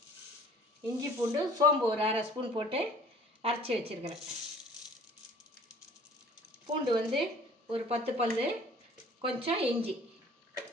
இஞ்சி பூண்டு சோம்பு ஒரு அரை ஸ்பூன் போட்டு அரைச்சி வச்சுருக்கிறேன். பூண்டு வந்து ஒரு 10 பல், கொஞ்சம் இஞ்சி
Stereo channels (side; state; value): both; normal; correlation 0.50